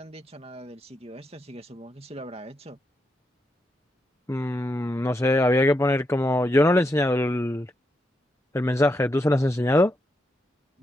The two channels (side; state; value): both; normal; correlation 0.82